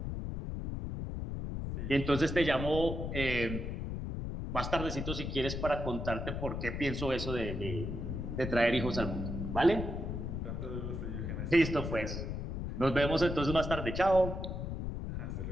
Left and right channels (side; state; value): left; noise; rumble, 4 dB below the sound